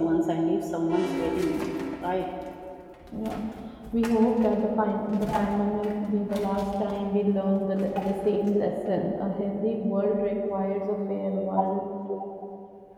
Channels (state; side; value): identical; both; correlation 1.00